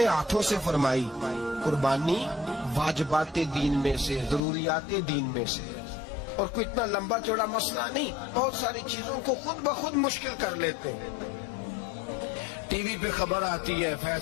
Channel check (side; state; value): right; drops out; at 4.4 s